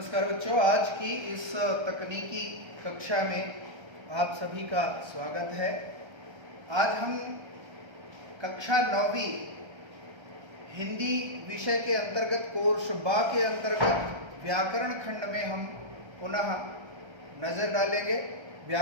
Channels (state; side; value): late; left; 1.3 ms